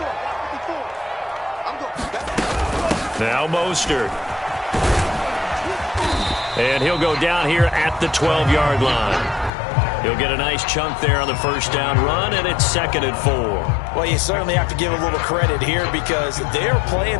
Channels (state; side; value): drops out; right; at 9.5 s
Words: Now Mostert. And he'll go down here at the 12-yard line. He'll get a nice chunk there on the first down run, and it's 2nd and 4. Well, you certainly have to give a little credit here because they're